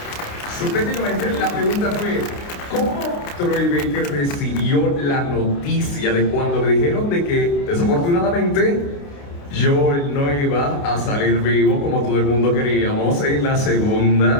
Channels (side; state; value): right; late; 29 ms